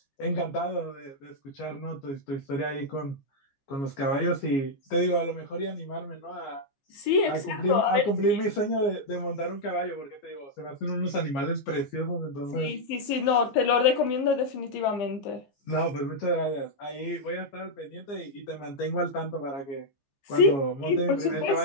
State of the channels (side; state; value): right; late; 15 ms